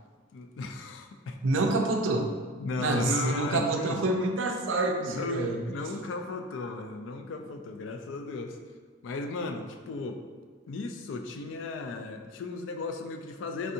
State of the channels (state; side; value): normal; both; correlation 0.32